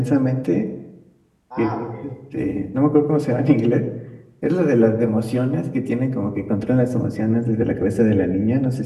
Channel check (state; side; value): identical; both; correlation 1.00